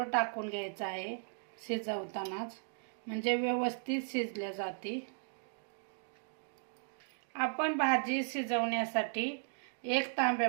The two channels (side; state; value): left; silent; digital silence